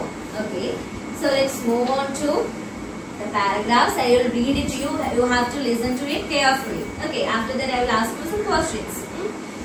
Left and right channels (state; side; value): identical; both; correlation 1.00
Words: Okay. So let's move on to the paragraphs. I will read it to you. You have to listen to it carefully. Okay. After that, I will ask you some questions.